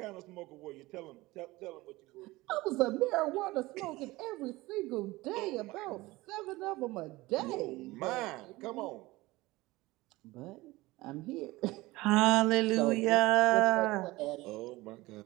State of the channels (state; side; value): quieter; left; 20.0 dB